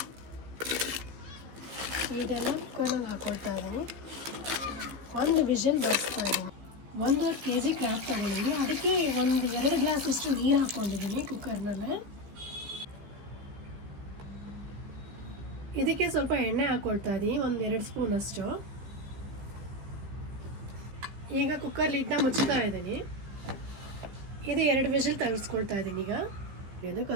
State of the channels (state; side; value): late; left; 15 ms